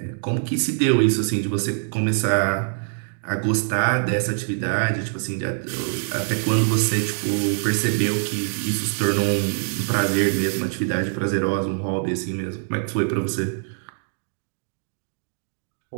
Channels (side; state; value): left; silent; 63 dB below the other